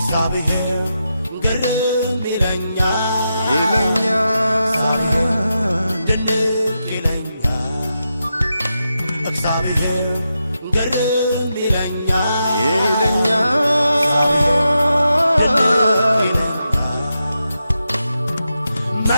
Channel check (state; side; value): inverted; both; correlation -0.87